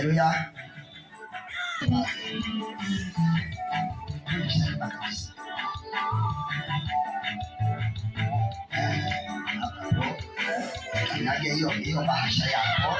Kanyaga hiyo bahasha yako.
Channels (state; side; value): identical; both; correlation 1.00